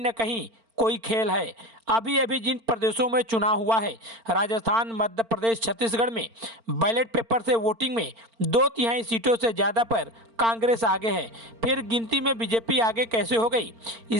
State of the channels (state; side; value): late; left; 4.4 ms